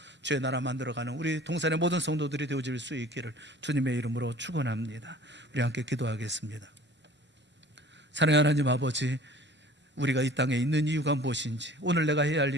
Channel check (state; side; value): normal; both; correlation 0.47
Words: 주의 나라 만들어가는 우리 동산의 모든 성도들이 되어질 수 있기를 주님의 이름으로 축원합니다. 우리 함께 기도하겠습니다. 사랑하는 하나님 아버지, 우리가 이 땅에 있는 이유가 무엇인지 오늘 내가 해야 할